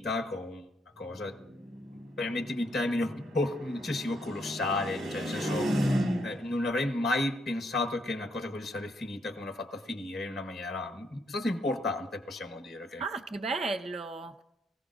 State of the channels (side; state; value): both; normal; correlation 0.75